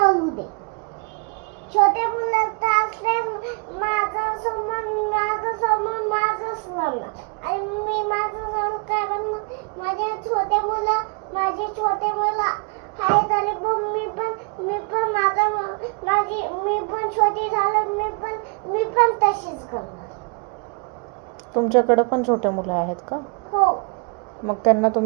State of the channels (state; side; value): quieter; left; 34.4 dB